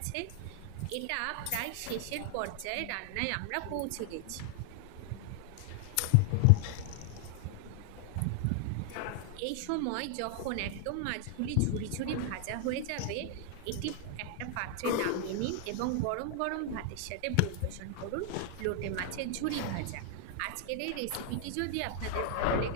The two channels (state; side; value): different; both; correlation 0.00